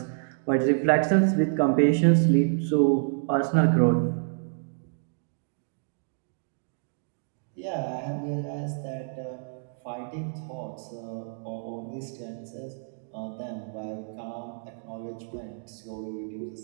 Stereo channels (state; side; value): silent; left; digital silence